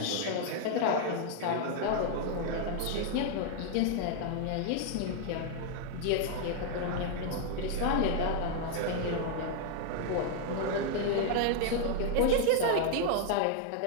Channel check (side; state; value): both; different; correlation 0.00